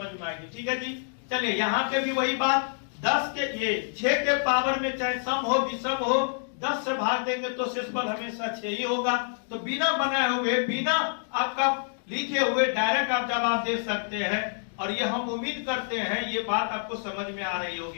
में आएगी। ठीक है जी, चलिए यहाँ पे भी वही बात 10 के ये 6 के पावर में चाहे सम हो विषम हो 10 से भाग देंगे तो शेषफल हमेशा 6 ही होगा। तो बिना बनाए हुए, बिना आपका लिखे हुए डायरेक्ट आप जवाब दे सकते हैं, और ये हम उम्मीद करते हैं ये बात आपको समझ में आ रही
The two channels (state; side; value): silent; right; digital silence